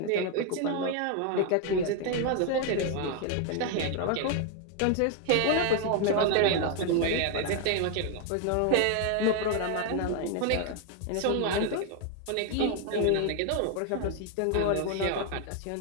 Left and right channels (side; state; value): both; different; correlation 0.01